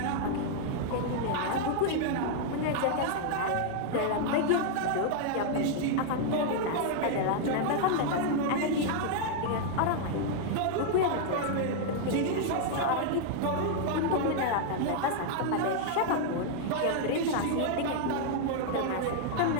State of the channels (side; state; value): both; different; correlation -0.01